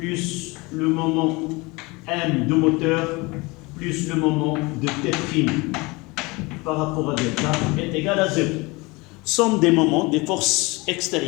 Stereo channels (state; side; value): quieter; right; 24.8 dB